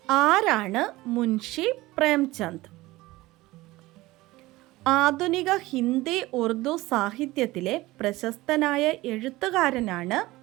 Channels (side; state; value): left; quieter; 19.0 dB